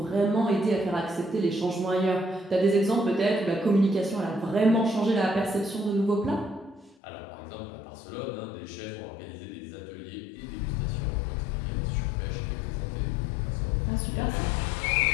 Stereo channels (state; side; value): drops out; right; at 7.0 s